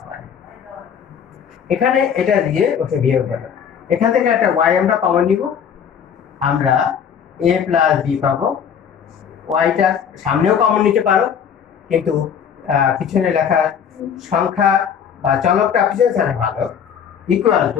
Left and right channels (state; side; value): quieter; right; 7.8 dB